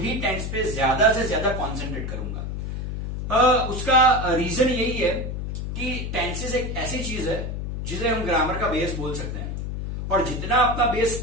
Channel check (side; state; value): left; noise; hum, 4 dB below the sound